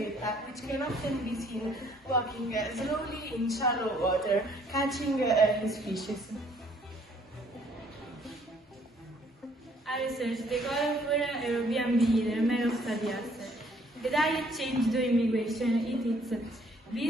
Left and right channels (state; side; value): normal; both; correlation 0.62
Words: which can often be seen walking slowly in shallow water, catching his fishes. I researched the colorful European bee, the Merostadias. The diet changed during migration. It eats